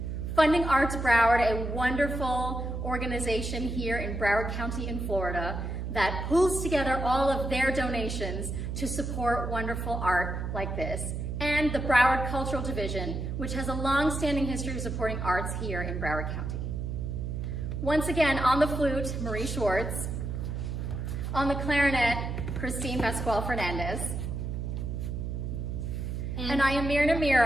Funding Arts Broward, a wonderful organization here in Broward County in Florida that pulls together all of their donations to support wonderful art like this. And the Broward Cultural Division, which has a long-standing history of supporting arts here in Broward County. Once again, on the flute, Marie Schwartz. On the clarinet, Pascual Fernandez. And I am Myrna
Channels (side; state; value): right; noise; hum, 4 dB below the sound